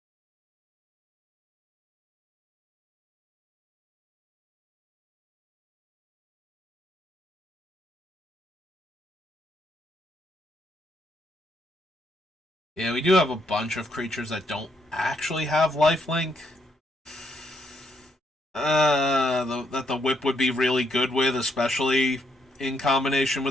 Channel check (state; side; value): normal; both; correlation 0.75